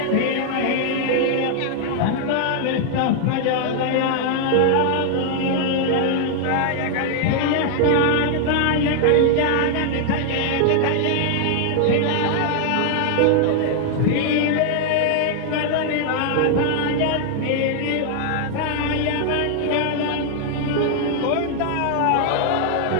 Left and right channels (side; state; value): both; different; correlation 0.00